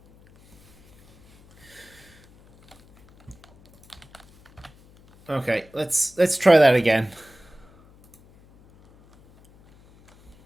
Okay, let's try that again.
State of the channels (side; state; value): left; noise; hum, 28 dB below the sound